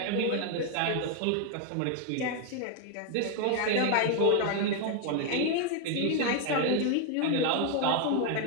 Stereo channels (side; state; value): both; different; correlation 0.01